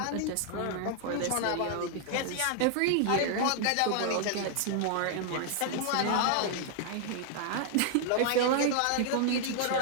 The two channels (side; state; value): both; different; correlation 0.00